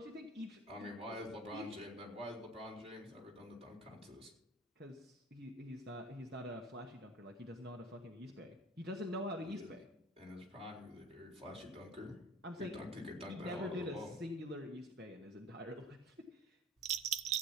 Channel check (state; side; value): normal; both; correlation 0.43